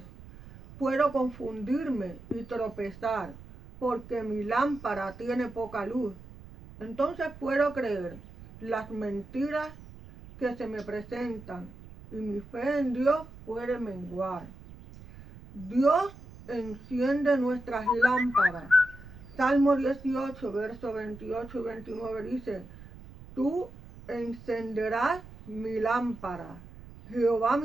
Puedo confundirme y tropezar porque mi lámpara tiene poca luz. Entonces puedo creer las mentiras que se me presentan y mi fe en Dios puede menguar. Dios enciende nuestras lámparas. Salmo 18, versos 28 y 29 dice: tú encenderás mi lámpara. Jehová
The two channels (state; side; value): noise; right; rumble, 18 dB below the sound